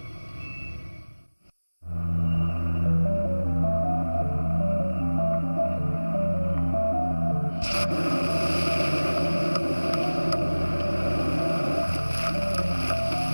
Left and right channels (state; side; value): inverted; both; correlation -1.00